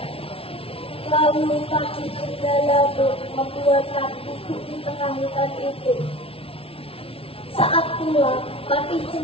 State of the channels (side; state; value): right; late; 0.27 ms